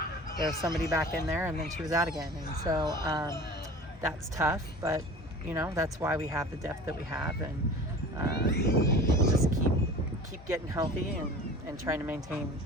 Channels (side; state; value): both; normal; correlation 0.40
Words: there's somebody back in there, and then she was out again, and so that's tough. But that's why we have the depth that we have, and just keep getting healthy and trying to maintain